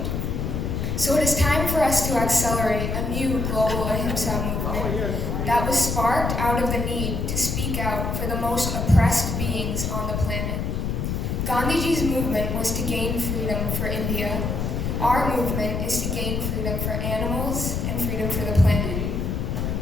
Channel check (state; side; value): noise; left; rumble, 1 dB below the sound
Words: So it is time for us to accelerate a new global Ahimsa movement that was sparked out of the need to speak out for the most oppressed beings on the planet. Gandhiji's movement was to gain freedom for India. Our movement is to gain freedom for animals and freedom for the planet.